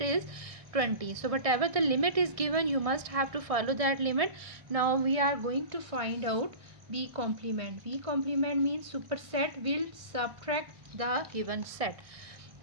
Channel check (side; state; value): left; late; 1.6 ms